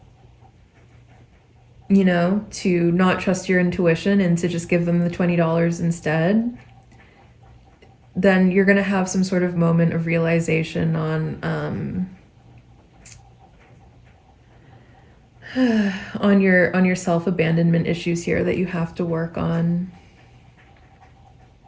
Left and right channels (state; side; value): identical; both; correlation 1.00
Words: you know, to not trust your intuition and to just give them the $20 instead, then you're going to have some sort of moment of realization on your self-abandonment issues here that you have to work on.